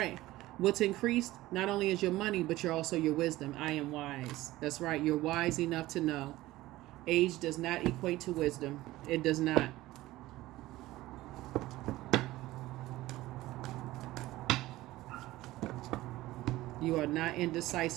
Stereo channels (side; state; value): left; quieter; 17.2 dB